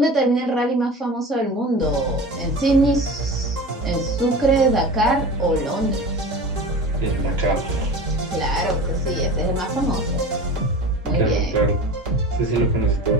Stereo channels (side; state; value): both; normal; correlation 0.34